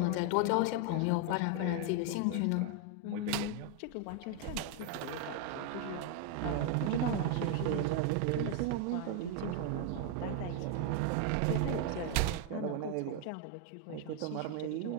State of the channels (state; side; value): different; both; correlation 0.01